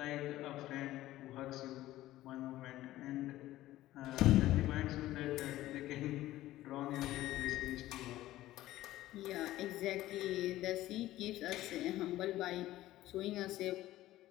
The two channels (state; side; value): quieter; right; 15.4 dB